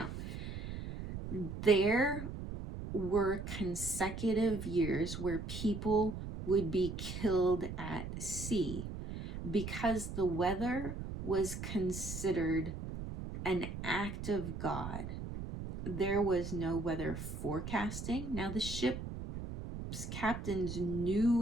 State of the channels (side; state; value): right; noise; rumble, 7 dB below the sound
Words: there were consecutive years where people would be killed at sea because the weather was considered an act of God. There was no weather forecasting. Now, the ship's captains knew